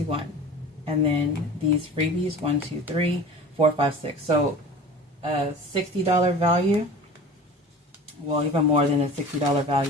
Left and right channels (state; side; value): normal; both; correlation 0.38